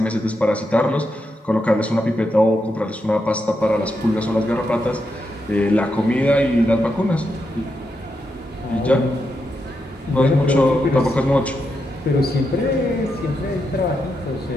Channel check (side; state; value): both; normal; correlation 0.84